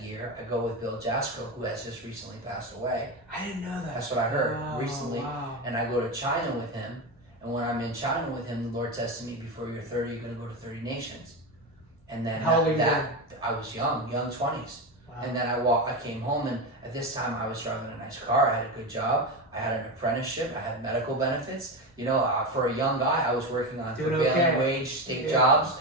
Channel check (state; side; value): normal; both; correlation 0.17